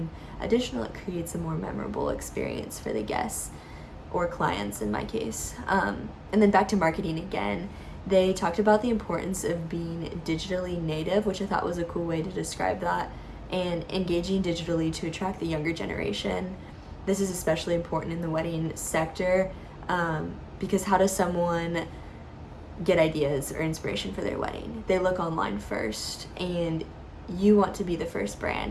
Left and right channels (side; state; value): both; identical; correlation 1.00